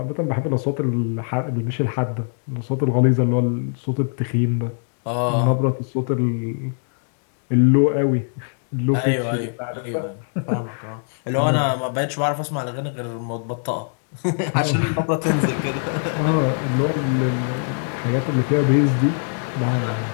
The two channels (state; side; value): silent; right; digital silence